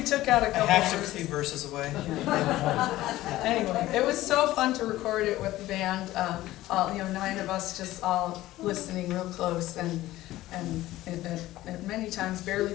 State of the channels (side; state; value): right; quieter; 16.0 dB